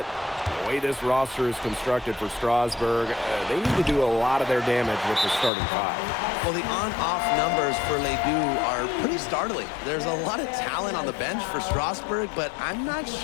The way this roster is constructed for Strasburg, they need to do a lot of their damage with the starting 5. Well, the on-off numbers for Ledoux are pretty startling. There's a lot of talent on the bench for Strasburg, but I'm not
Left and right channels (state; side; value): drops out; right; at 5.5 s